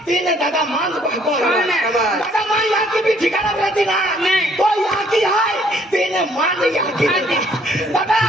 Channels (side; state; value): both; normal; correlation 0.63